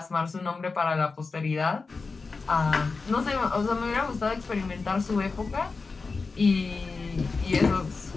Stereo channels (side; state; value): right; quieter; 4.3 dB